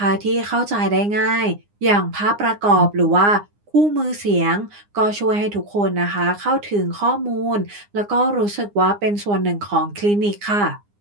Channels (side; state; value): left; late; 9.8 ms